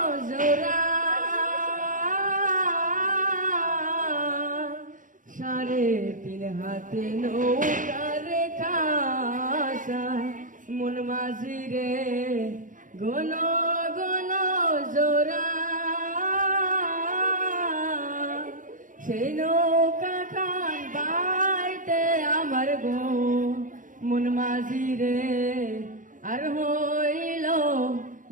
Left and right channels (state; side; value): late; left; 0.38 ms